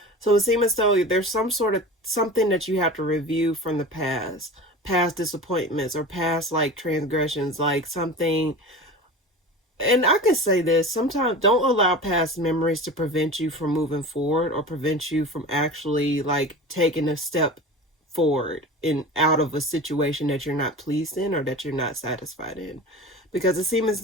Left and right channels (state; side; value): normal; both; correlation 0.33